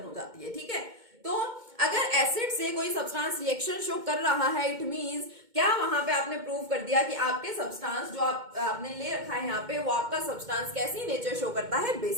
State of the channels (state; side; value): late; left; 2.2 ms